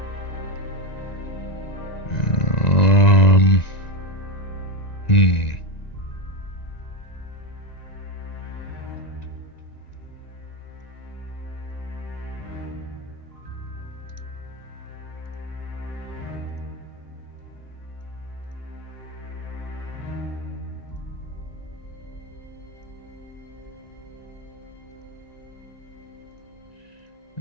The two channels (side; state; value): right; late; 1.9 ms